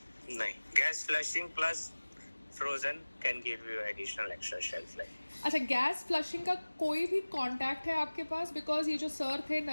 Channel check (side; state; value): both; inverted; correlation -1.00